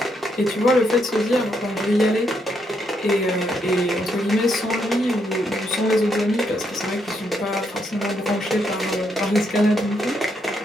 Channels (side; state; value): both; normal; correlation 0.77